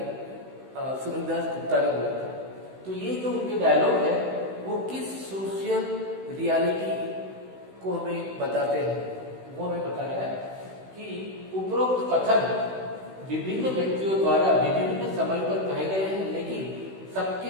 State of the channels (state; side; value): late; left; 16 ms